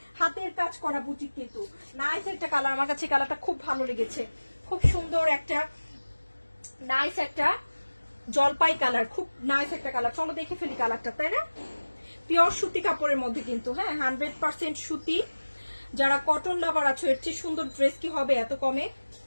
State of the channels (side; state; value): both; inverted; correlation -1.00